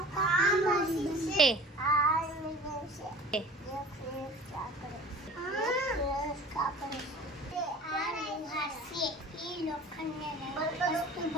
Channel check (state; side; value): normal; both; correlation 0.43